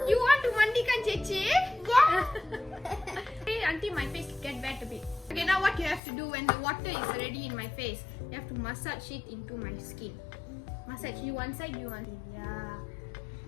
You want to mandikan Chechi? Yeah. Spray until my face get wet a bit. Okay, now what you have to do when the water is already in my face, you have to massage it into my skin. Massage you one side, you one side. Yeah.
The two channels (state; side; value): drops out; right; at 6.0 s